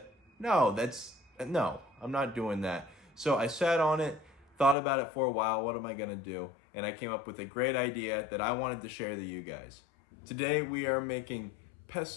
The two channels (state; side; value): drops out; right; at 4.8 s